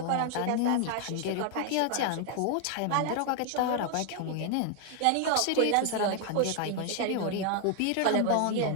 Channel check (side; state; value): both; different; correlation 0.00